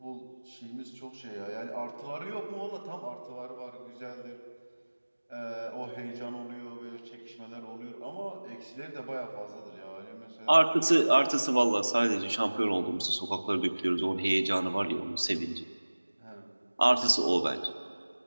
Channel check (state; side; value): inverted; both; correlation -1.00